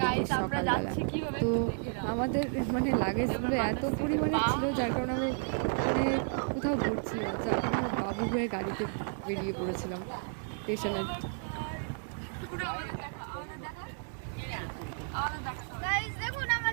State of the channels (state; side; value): silent; left; 56 dB below the other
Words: সকালবেলা। তো আমাদের লাগেজগুলো এত পরিমাণে ছিল, যার কারণে আমরা কোথাও ঘুরছি না, যার কারণে আমরা বাবু হয়ে গাড়িতে বেরিয়ে পড়েছিলাম স্টেশনে। দেখুন